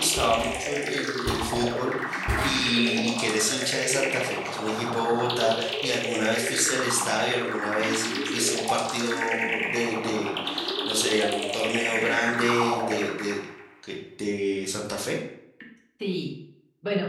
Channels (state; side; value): identical; both; correlation 1.00